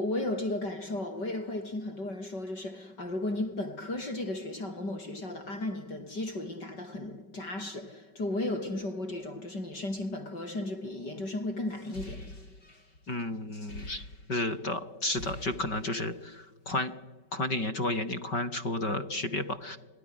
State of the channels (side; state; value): right; late; 5.2 ms